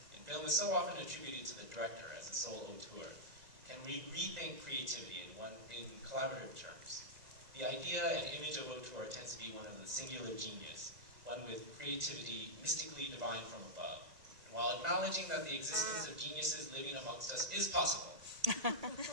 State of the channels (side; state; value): left; late; 1.9 ms